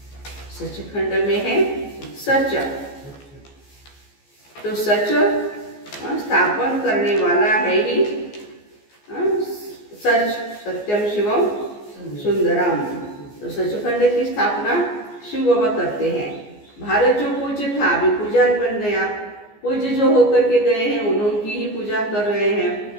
सचखंड में है सच। तो सच स्थापन करने वाला है ही सच, सत्यम शिवम सुंदरम। तो सचखंड की स्थापना शिव बाबा करते हैं। भारत जो पूज्य था अभी पुजारी बन गया। पूज्य जो होकर के गए हैं उन्होंने ही पूजा कर रहे हैं।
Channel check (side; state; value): right; late; 14 ms